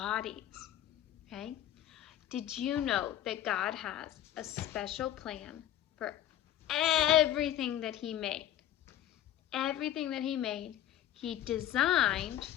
Okay? Did you know that God has a special plan for everything that He made? Everything that He made, He designed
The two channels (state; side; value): quieter; right; 12.3 dB